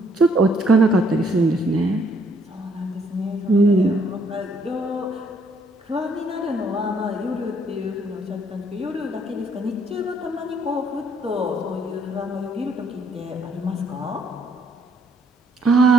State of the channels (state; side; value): normal; both; correlation 0.67